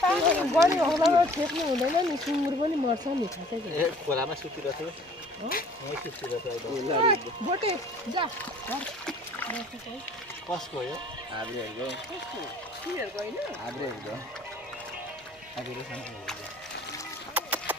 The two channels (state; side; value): normal; both; correlation 0.52